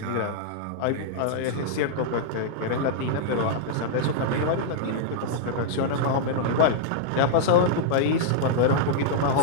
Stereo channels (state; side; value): different; both; correlation -0.02